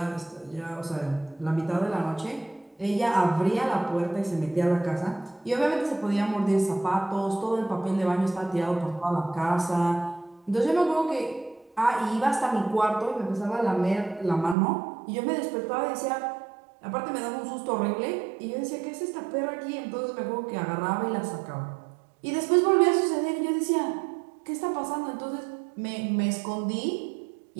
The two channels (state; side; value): drops out; left; at 14.6 s